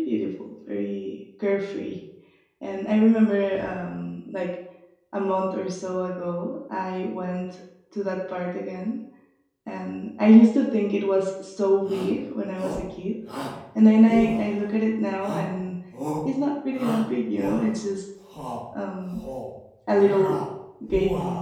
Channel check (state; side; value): identical; both; correlation 1.00